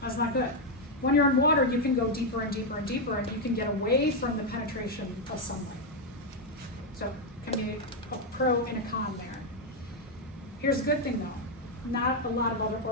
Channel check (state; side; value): normal; both; correlation 0.02